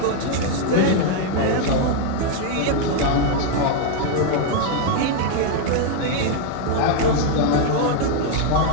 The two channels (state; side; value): different; both; correlation 0.00